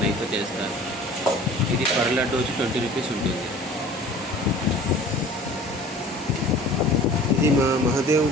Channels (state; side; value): normal; both; correlation 0.45